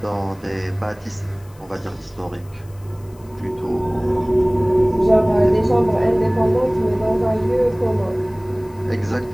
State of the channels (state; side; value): noise; left; hiss, 28 dB below the sound